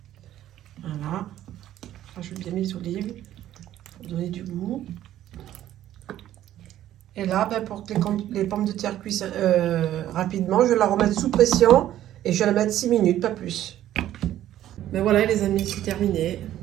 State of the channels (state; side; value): quieter; left; 12.6 dB